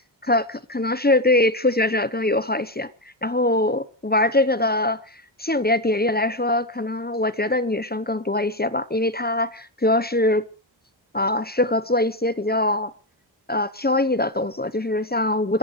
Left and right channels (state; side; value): normal; both; correlation 0.09